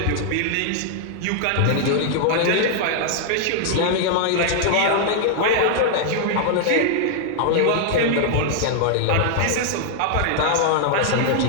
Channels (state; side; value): different; both; correlation 0.00